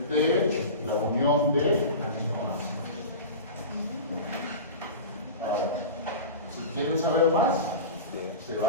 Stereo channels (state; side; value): inverted; both; correlation -0.30